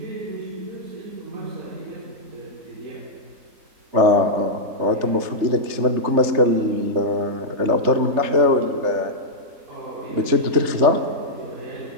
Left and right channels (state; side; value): late; left; 3.3 ms